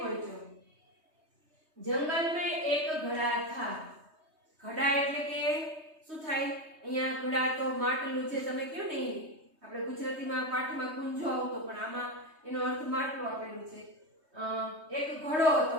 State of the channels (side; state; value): left; late; 3.2 ms